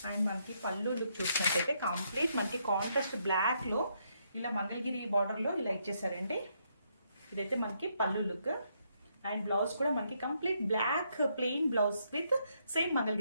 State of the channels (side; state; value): both; inverted; correlation -0.75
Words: అండ్ మనకి పళ్ళు లుక్ చూసినట్టయితే కంప్లీట్ మనకి కాంట్రాస్ట్ బ్లాక్ లో ఇలా మంగళగిరి బార్డర్ లో ఇలా ఇచ్చేసారండి. ఇదైతే మనకి పళ్ళు లుక్. అండ్ బ్లౌజ్ కూడా మనకి complete black plain blouse with same